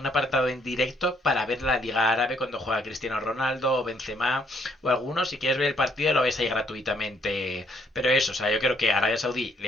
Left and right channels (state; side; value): normal; both; correlation 0.69